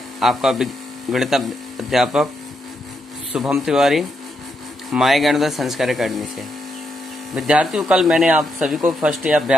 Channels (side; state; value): both; normal; correlation 0.81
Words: आपका गणित अध्यापक शुभम तिवारी माय ज्ञानोदय संस्कार अकेडमी से। विद्यार्थियों, कल मैंने आप सभी को फर्स्ट